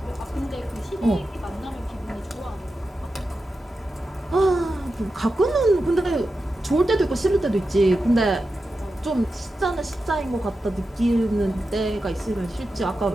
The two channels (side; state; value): both; normal; correlation 0.91